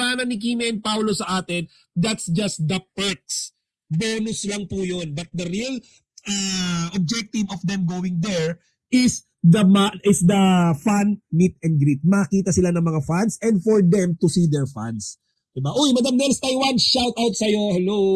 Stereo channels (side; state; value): both; identical; correlation 1.00